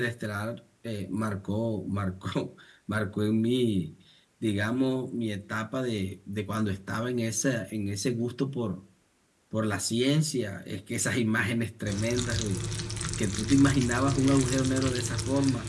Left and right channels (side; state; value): both; identical; correlation 1.00